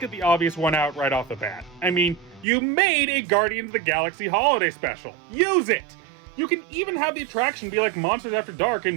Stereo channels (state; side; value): drops out; left; at 2.5 s